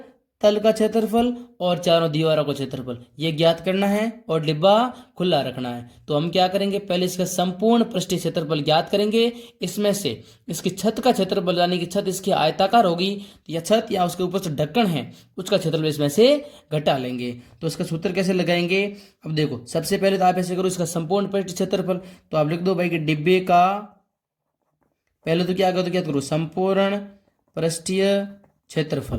तल का क्षेत्रफल और चारों दीवारों का क्षेत्रफल ये ज्ञात करना है और डिब्बा खुला रखना है। तो हम क्या करेंगे, पहले इसका संपूर्ण पृष्ठीय क्षेत्रफल ज्ञात करेंगे। इसमें से इसकी छत का क्षेत्रफल, यानी कि छत इसकी आयताकार होगी या छत या उसके ऊपर से ढक्कन है उसका क्षेत्रफल इसमें से घटा लेंगे। तो इसका सूत्र कैसे लगाएंगे, अब देखो सबसे पहले तो आप ऐसे करो, इसका संपूर्ण पृष्ठीय क्षेत्रफल तो आप लिख दो भाई कि डिब्बे का, पहले तो क्या करो संपूर्ण पृष्ठीय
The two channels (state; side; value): identical; both; correlation 1.00